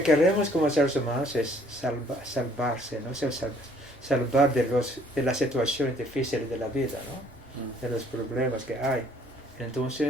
queremos como seres humanos es salvarse, ¿no? Salvar de las situaciones difíciles de la vida, ¿no? De los problemas que hay.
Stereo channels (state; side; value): normal; both; correlation 0.61